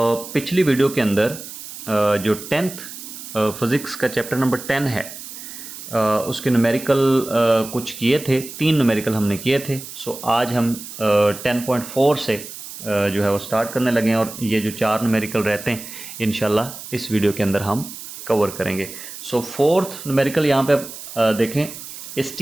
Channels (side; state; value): right; noise; hiss, 12 dB below the sound